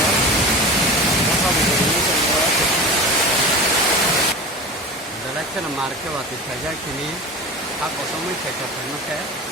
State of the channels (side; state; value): both; normal; correlation 0.32